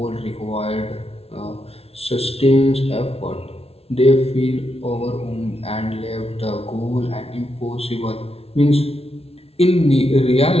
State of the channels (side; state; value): right; late; 0.29 ms